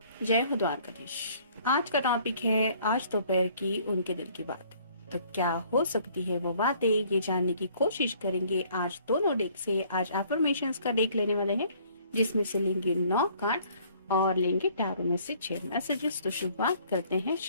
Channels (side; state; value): both; inverted; correlation -0.59